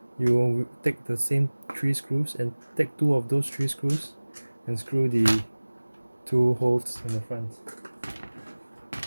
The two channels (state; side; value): inverted; both; correlation -1.00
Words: you will take the same 3 screws and take 2 of those 3 screws and screw the 2 holes in the front.